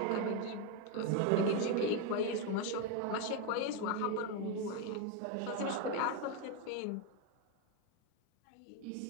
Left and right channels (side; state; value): both; different; correlation 0.02